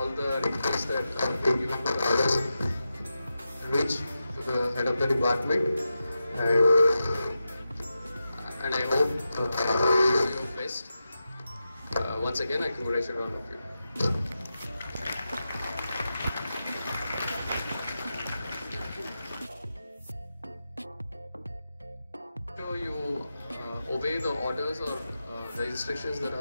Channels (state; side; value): inverted; both; correlation -0.90